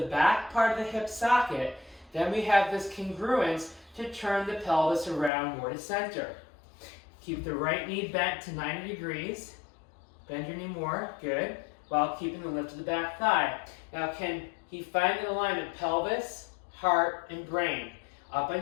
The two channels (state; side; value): drops out; right; at 5.3 s